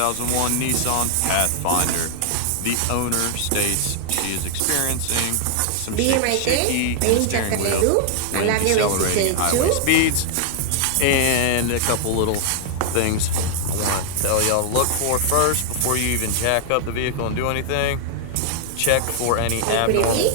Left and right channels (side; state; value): both; different; correlation 0.00